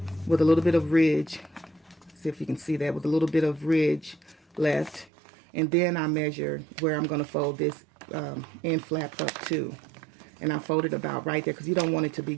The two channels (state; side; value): drops out; left; at 5.1 s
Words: with a little bit of ridge. See if you can see that, with a little bit of ridge left. And then I measure where I'm going to fold this end flap up to. And I fold it about right there because you don't want it to be